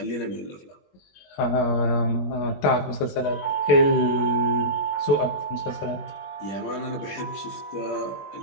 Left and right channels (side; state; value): right; late; 21 ms